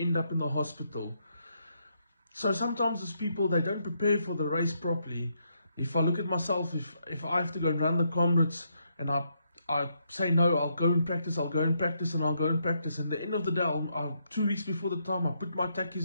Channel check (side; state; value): both; inverted; correlation -0.77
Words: up in the hospital. So sometimes as people, they don't prepare for the race properly. If I look at myself, if I have to go and run the Comrades and I say no, I'll go and practice, and at the end of the day, 2 weeks before the time, I put my